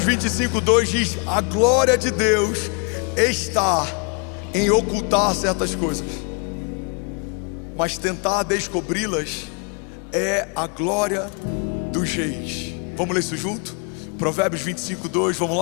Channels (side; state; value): right; quieter; 36.4 dB